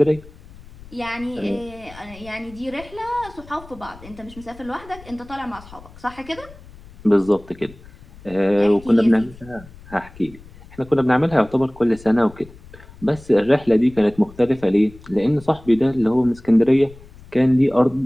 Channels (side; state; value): left; noise; rumble, 20 dB below the sound